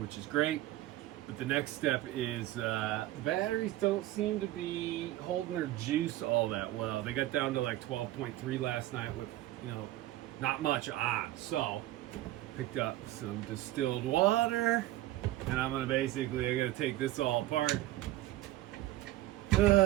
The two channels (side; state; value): left; quieter; 15.5 dB